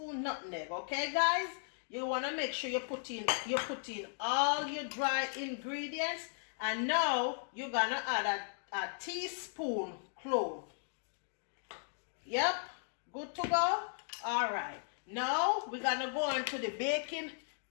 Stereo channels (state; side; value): silent; right; digital silence